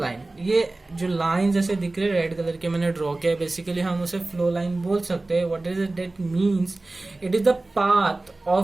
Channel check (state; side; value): quieter; left; 3.0 dB